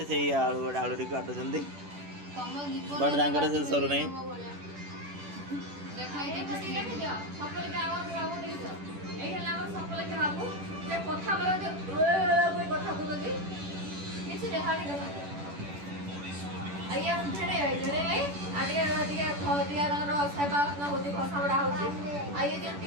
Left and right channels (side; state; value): left; late; 10 ms